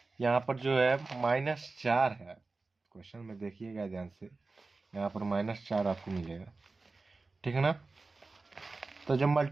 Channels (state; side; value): quieter; left; 3.7 dB